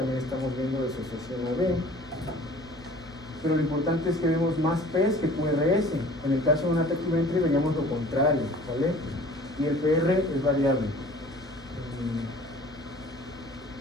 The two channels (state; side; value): normal; both; correlation 0.48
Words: estamos viendo disociación AB. Pero lo importante es que vemos más P's que QRS. En el caso de un ataque ventri veríamos lo contrario, ¿vale? Y el PR es variable.